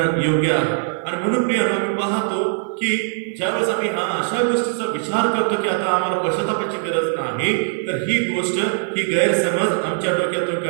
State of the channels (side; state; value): left; silent; 56 dB below the other